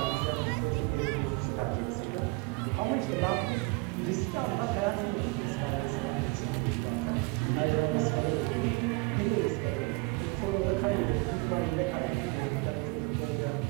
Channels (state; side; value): quieter; left; 25.4 dB